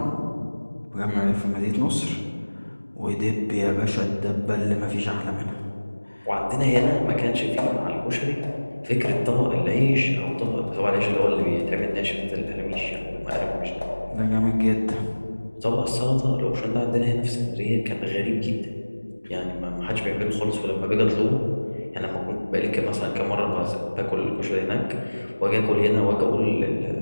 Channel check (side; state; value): both; inverted; correlation -1.00